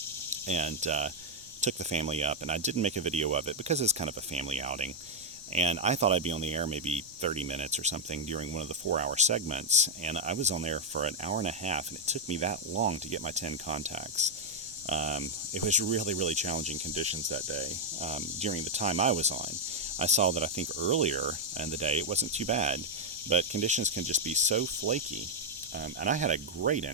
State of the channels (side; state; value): right; noise; rumble, 25 dB below the sound